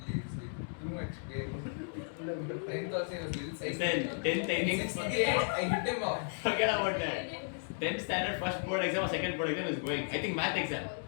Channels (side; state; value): right; silent; digital silence